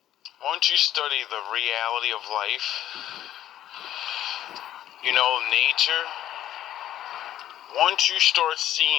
once you study the reality of life, you know, nature, once you start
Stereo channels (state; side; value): quieter; right; 12.2 dB